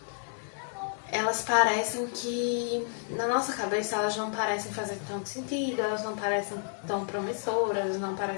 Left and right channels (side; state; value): right; silent; 57 dB below the other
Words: elas parecem que, na nossa cabeça, elas não parecem fazer tanto sentido, elas não parecem tão promissoras, não